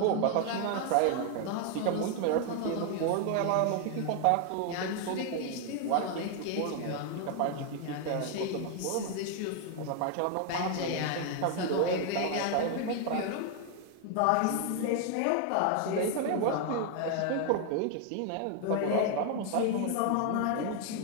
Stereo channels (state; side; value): different; both; correlation 0.00